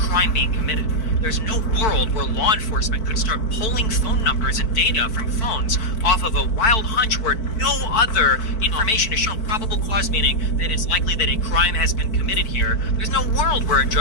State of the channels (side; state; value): right; late; 4.5 ms